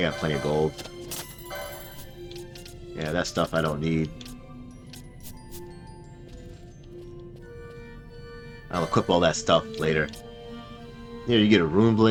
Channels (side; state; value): both; identical; correlation 1.00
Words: plenty of gold. Yeah, that stuff I don't need. I'll equip all that stuff later. Here, you get a rune